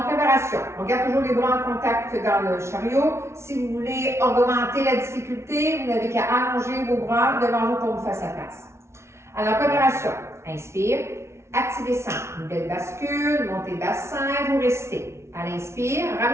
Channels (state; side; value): late; left; 0.13 ms